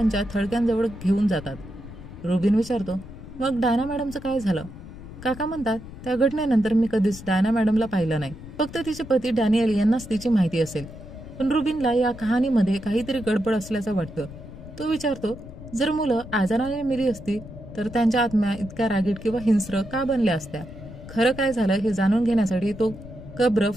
थडक्यांजवळ घेऊन जातात. रुबिन विचारतो, मग डायना मॅडमचं काय झालं? काका म्हणतात, त्या घटनेनंतर मी कधीच डायना मॅडमला पाहिलं नाही. फक्त तिचे पती डॅनियल यांनाच तिची माहिती असेल. पण रुबिनला या कहाणीमध्ये काहीतरी गडबड असल्याचं वाटतं. तो विचारतो, जर मुलं आजाराने मेली असती तर त्यांच्या आत्म्या इतक्या रागीट किंवा हिंस्र का बनल्या असत्या? खरं काय झालं हे जाणून घेण्यासाठी तो कब्र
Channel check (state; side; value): noise; left; rumble, 14 dB below the sound